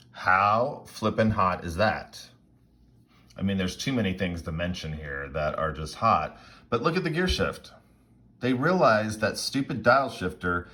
How flippin' hot is that? I mean, there's too many things to mention here that are just hot, but look at the gear shift. They realize that stupid dial shifter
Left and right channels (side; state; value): both; identical; correlation 1.00